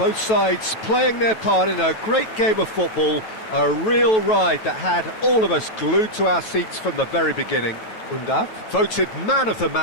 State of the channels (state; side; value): late; right; 9.2 ms